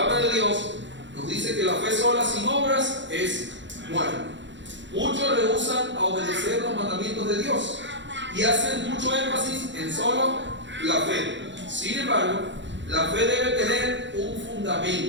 de Dios nos dice que la fe sola sin obras es muerta. Muchos rehusan a obedecer los mandamientos de Dios y hacen mucho énfasis en solo la fe. Sin embargo, la fe debe tener un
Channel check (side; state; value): left; late; 0.53 ms